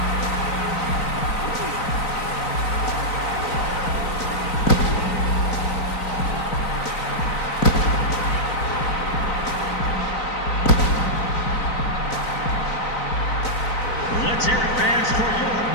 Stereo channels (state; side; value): late; right; 3.9 ms